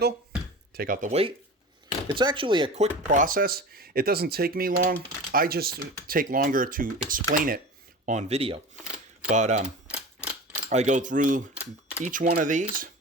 Take out the weight. It's actually a quick process. It doesn't take me long. I just take longer to explain it on video. But I go through each one of these.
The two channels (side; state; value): both; normal; correlation 0.34